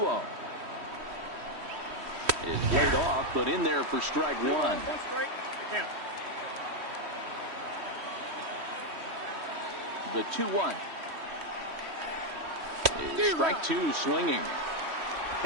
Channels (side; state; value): left; late; 3.1 ms